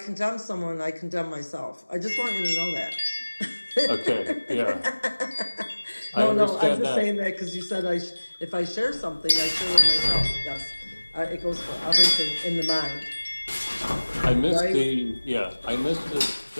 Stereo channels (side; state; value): both; inverted; correlation -1.00